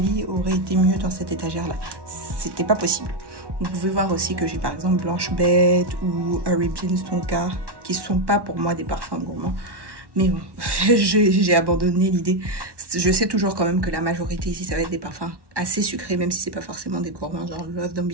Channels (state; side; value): late; left; 1.1 ms